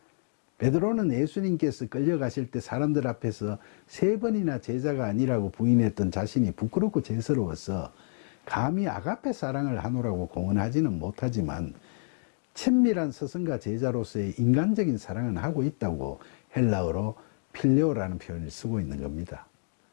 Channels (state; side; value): silent; right; digital silence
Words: 베드로는 예수님께서 끌려가실 때 사람들 앞에서 3번이나 제자가 아니라고 부인했던 자신이 부끄럽고 죄스러워서 감히 아가페 사랑을 하노라고 공언하지는 못하지만 친밀한 스승과 제자로서의 인간적인 사랑은 하고 있다고 헬라어로 필레오라는 표현을 쓰고 있는 겁니다.